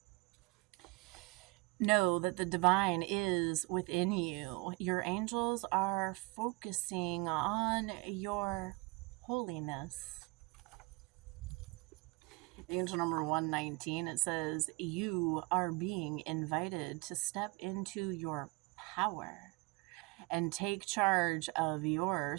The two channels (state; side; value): quieter; left; 27.3 dB